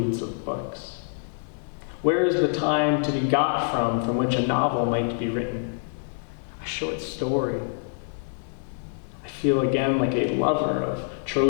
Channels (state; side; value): silent; right; digital silence